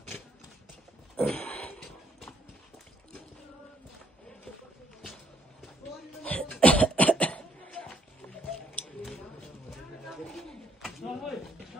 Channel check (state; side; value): normal; both; correlation 0.68